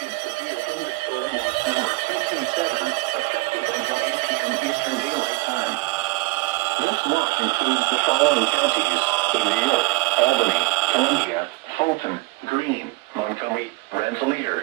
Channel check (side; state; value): left; quieter; 23.4 dB